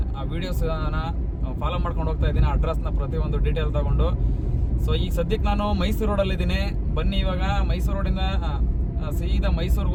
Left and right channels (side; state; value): both; identical; correlation 1.00